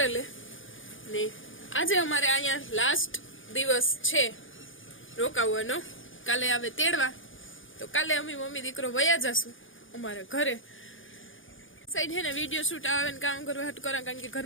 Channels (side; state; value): right; late; 0.58 ms